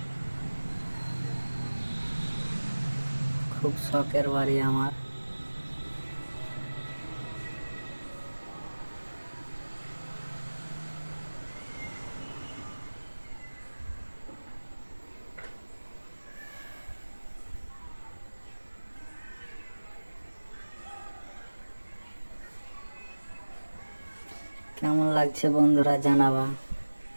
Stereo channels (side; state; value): both; inverted; correlation -1.00